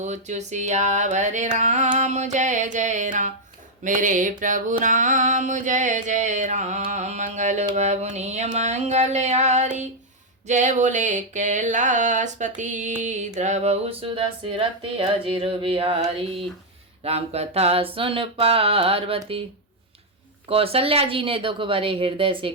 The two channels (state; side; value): normal; both; correlation -0.01